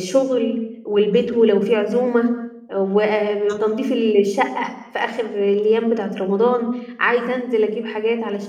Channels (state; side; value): identical; both; correlation 1.00